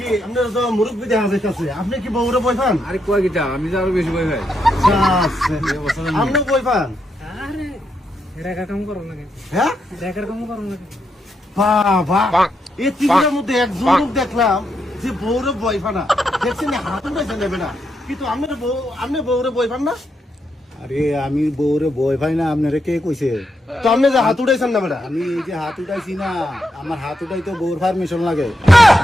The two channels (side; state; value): both; normal; correlation 0.81